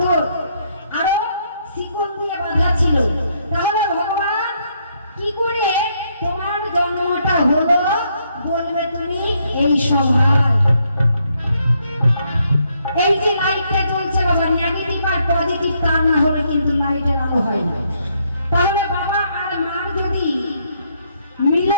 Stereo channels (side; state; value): both; inverted; correlation -0.73